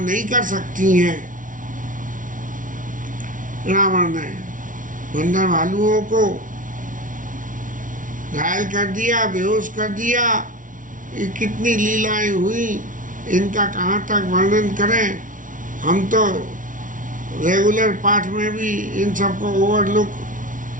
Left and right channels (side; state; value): left; late; 0.38 ms